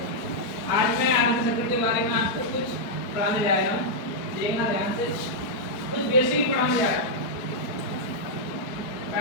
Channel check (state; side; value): late; right; 4.4 ms